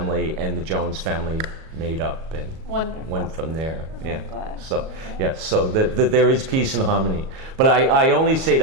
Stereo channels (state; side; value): late; left; 37 ms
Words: and the Jones family made up and went from there. Glad. So so there is peace and harmony. But I only say